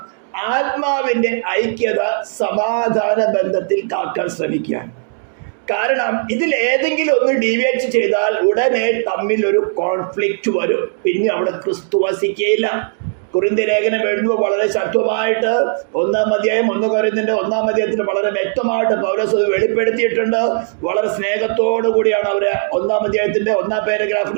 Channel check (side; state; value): left; silent; digital silence